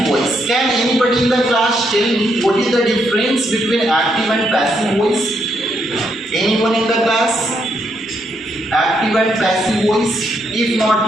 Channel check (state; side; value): normal; both; correlation 0.76